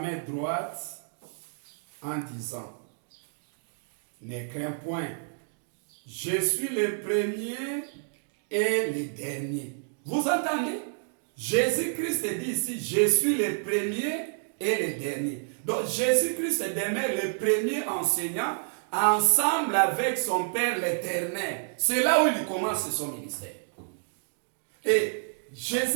droite en disant, ne crains point, je suis le premier et le dernier. Vous entendez? Jésus-Christ dit ici, je suis le premier et le dernier. Donc Jésus-Christ demeure le premier enseignant ensemble avec son Père l'Éternel. C'est là où il commence son ministère. Et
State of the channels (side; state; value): left; silent; digital silence